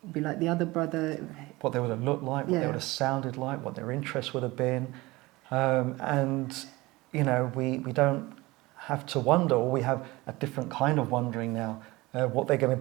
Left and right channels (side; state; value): left; quieter; 21.1 dB